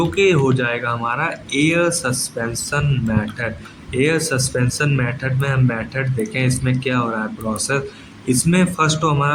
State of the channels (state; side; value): identical; both; correlation 1.00